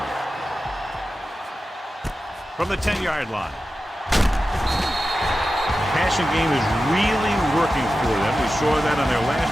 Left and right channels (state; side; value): normal; both; correlation 0.93